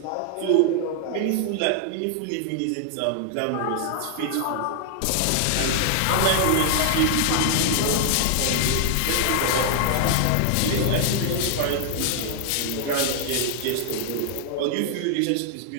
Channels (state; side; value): different; both; correlation 0.00